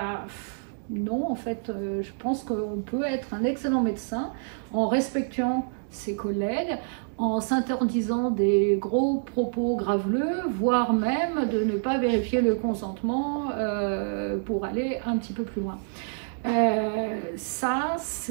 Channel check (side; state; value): left; silent; digital silence